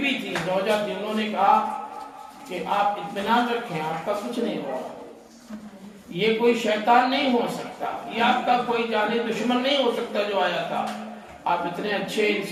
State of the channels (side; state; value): both; identical; correlation 1.00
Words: تھی، زوجہ تھی، انہوں نے کہا کہ آپ اطمینان رکھیں، آپ کا کچھ نہیں ہوگا، یہ کوئی شیطان نہیں ہو سکتا، یہ آپ کا کوئی جانی دشمن نہیں ہو سکتا جو آیا تھا۔ آپ اتنے اچھے